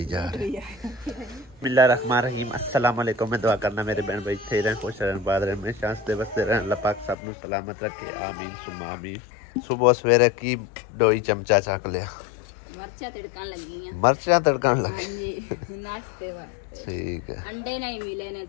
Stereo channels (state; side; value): drops out; right; at 7.2 s